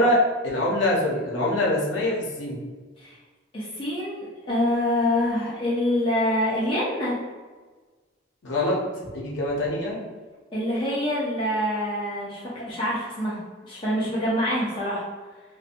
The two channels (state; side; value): normal; both; correlation 0.29